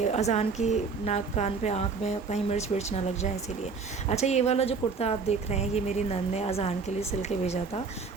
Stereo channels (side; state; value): left; quieter; 4.9 dB